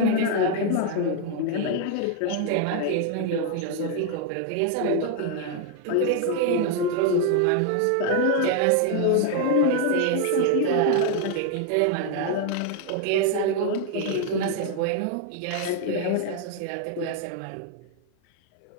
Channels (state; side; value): different; both; correlation 0.00